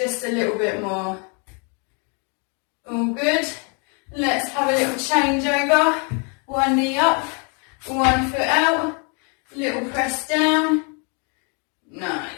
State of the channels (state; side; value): quieter; right; 36.3 dB